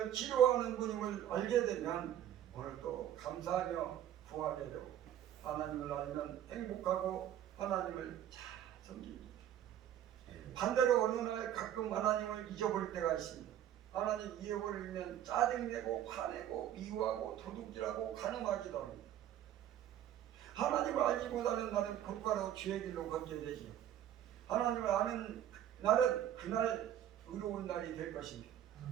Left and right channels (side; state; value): left; quieter; 11.1 dB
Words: 치료하는 분임을 알게 되면 오늘 또 감사하며 구하게 되고 하나님을 알면 행복하고 하나님을 잘 섬깁니다. 반대로 어느 날 가끔 하나님을 잊어버릴 때가 있습니다. 하나님 잃어버리면 짜증내고 화내고 미워하고 도둑질하고 간음하기도 합니다. 하나님을 알지 못하는 날은 곧바로 죄의 길로 걷게 되지. 하나님을 아는 날은 그날 의로운 날이 될 것입니다.